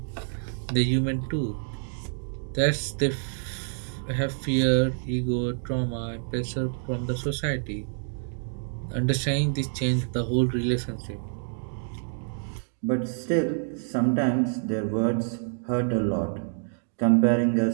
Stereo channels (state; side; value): silent; left; digital silence